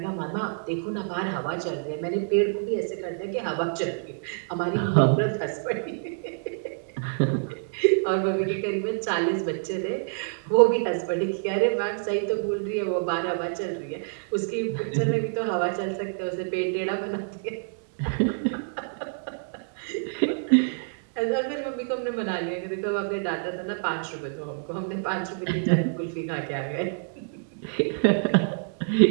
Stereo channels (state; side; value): silent; left; digital silence